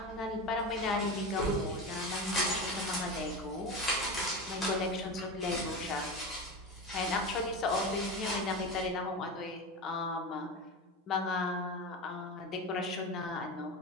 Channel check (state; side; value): normal; both; correlation 0.23